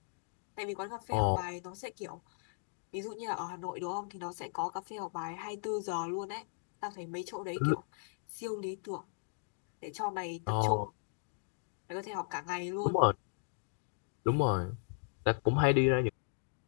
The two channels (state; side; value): silent; right; digital silence